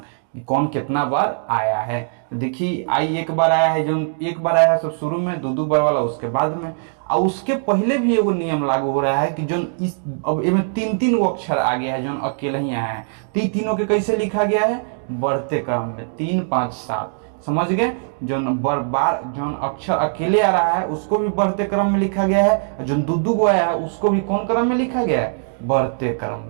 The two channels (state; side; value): silent; left; digital silence